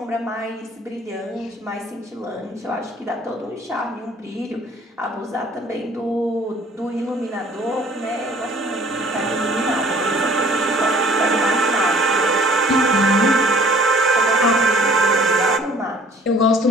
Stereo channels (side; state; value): both; normal; correlation 0.54